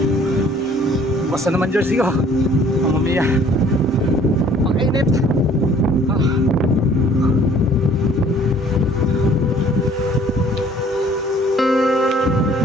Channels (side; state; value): both; normal; correlation 0.55